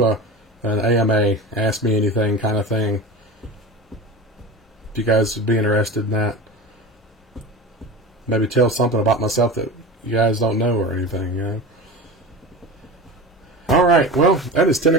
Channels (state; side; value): normal; both; correlation 0.30